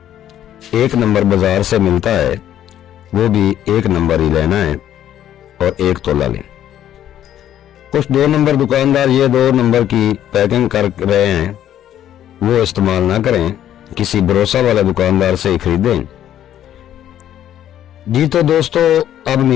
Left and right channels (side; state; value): right; quieter; 11.2 dB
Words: 1 نمبر بازار سے ملتا ہے، وہ بھی 1 نمبر ہی لینا ہے اور 1 تولہ لیں۔ کچھ 2 نمبر دکاندار یہ 2 نمبر کی پیکنگ کر رہے ہیں، وہ استعمال نہ کریں، کسی بھروسہ والے دکاندار سے ہی خریدیں۔ جی تو دوستو، اب